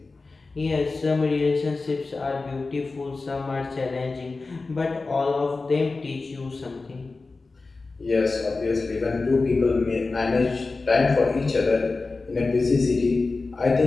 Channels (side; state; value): right; quieter; 3.7 dB